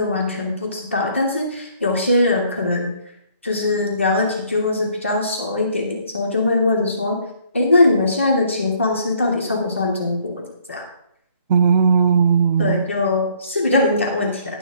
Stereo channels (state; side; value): inverted; both; correlation -0.62